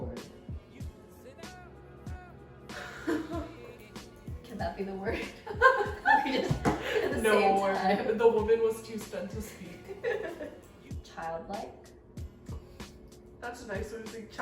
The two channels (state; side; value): identical; both; correlation 1.00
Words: Can that be the word? We just at the No, same time. the woman was too stunned to speak. Childlike? That's a nice way to say